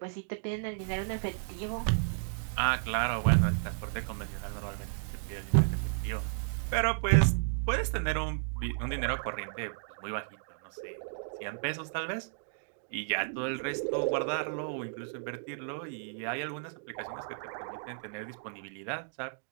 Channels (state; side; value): silent; left; digital silence